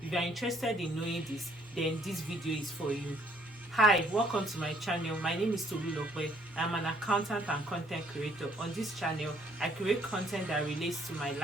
you are interested in knowing this, then this video is for you. Hi, welcome to my channel. My name is Tolulope. I'm an accountant and content creator. On this channel, I create content that relates to my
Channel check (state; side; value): normal; both; correlation 0.64